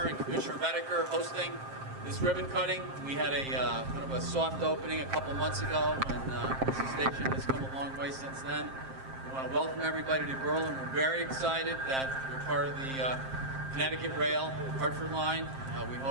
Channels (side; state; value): left; late; 7.6 ms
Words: and Commissioner Redeker hosting this ribbon cutting. We had a kind of a soft opening a couple months ago, and the station has come a long way since then. We want to welcome everybody to Berlin. We're very excited that we're part of the Connecticut Rail Hartford Line. We